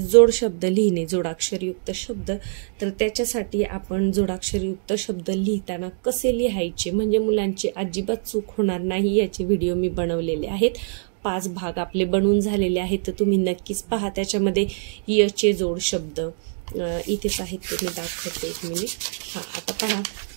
शब्द लिहिणे, जोडाक्षरयुक्त शब्द। तर त्याच्यासाठी आपण जोडाक्षरयुक्त शब्द लिहिताना कसे लिहायचे म्हणजे मुलांची अजिबात चूक होणार नाही याचे व्हिडिओ मी बनवलेले आहेत। 5 भाग आपले बनवून झालेले आहेत, तर तुम्ही नक्कीच पहा। त्याच्यामध्ये यचे जोड शब्द इथेच आहेत, ते मी दाखवते, 1 मिनिट। आता पहा,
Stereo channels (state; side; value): silent; left; digital silence